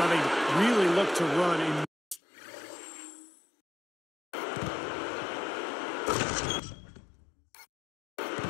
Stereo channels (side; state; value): right; drops out; at 2.2 s